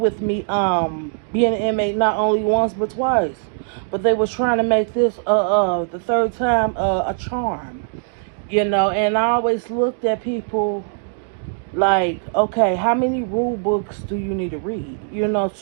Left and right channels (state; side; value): silent; left; digital silence